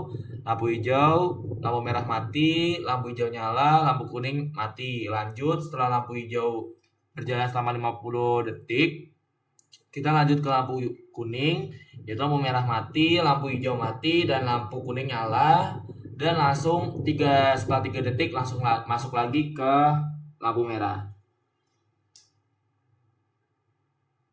lampu merah mati, lampu hijau nyala, lampu kuning mati. Lanjut setelah lampu hijau berjalan selama 50 detik, kita lanjut ke lampu kuning, yaitu lampu merah mati, lampu hijau mati, dan lampu kuning nyala. Dan setelah 3 detik langsung masuk lagi ke lampu merah.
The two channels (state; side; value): identical; both; correlation 1.00